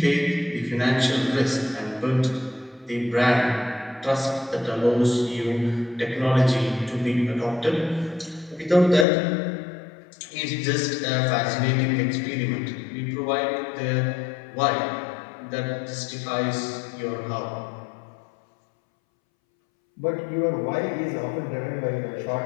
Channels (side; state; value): right; drops out; at 9.1 s